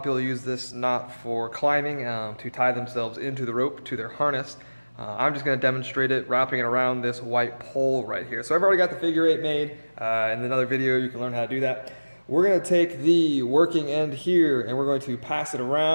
people use this knot for climbing to tie themselves into the rope to their harness. I'm just going to demonstrate it, wrapping it around this white pole right here. So I've already got the figure eight made. In another video, you can learn how to do that. We're going to take the working end here and we're going to pass it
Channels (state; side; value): inverted; both; correlation -1.00